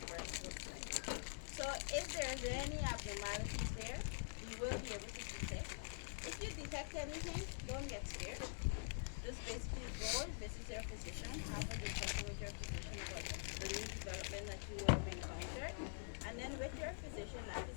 breast looks like. So if there's any abnormalities there, you will be able to detect. If you detect anything, don't get scared. Just basically go visit your physician, have a discussion with your physician about the new development that you will have encountered. And then with your physician, that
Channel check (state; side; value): silent; right; digital silence